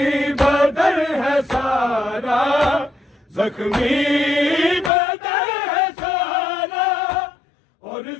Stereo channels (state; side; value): drops out; right; at 4.9 s